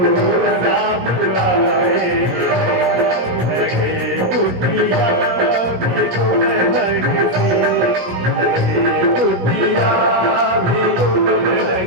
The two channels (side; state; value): left; late; 17 ms